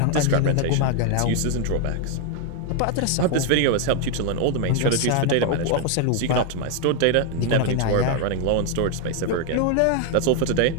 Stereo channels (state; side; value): different; both; correlation 0.00